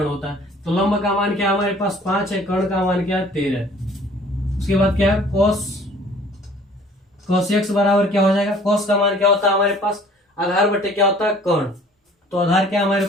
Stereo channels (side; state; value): both; normal; correlation 0.53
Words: होता है। तो लंब का मान क्या है हमारे पास 5 है, कर्ण का मान क्या है 13। उसके बाद क्या है cos एक्स बराबर क्या हो जाएगा, cos का मान क्या होता है हमारे पास आधार बटे क्या होता है कर्ण। तो आधार क्या हमारे